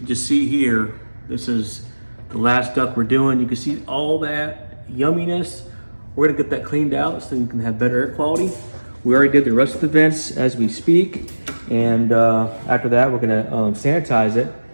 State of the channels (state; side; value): inverted; both; correlation -1.00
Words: just see here, this is the last duct we're doing. You can see all that yumminess. We're gonna get that cleaned out so you can have better air quality. We already did the rest of the vents as we speak. And after that, we're gonna sanitize it.